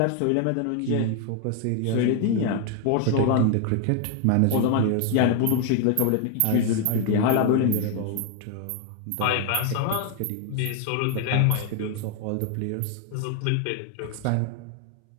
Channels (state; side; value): different; both; correlation 0.01